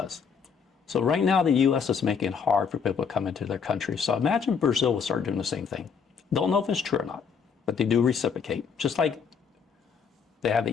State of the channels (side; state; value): right; quieter; 6.3 dB